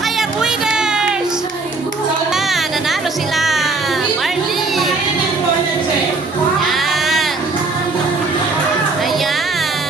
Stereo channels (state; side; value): quieter; left; 3.6 dB